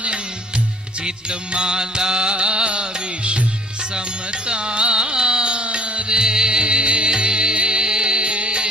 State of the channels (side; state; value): both; normal; correlation 0.51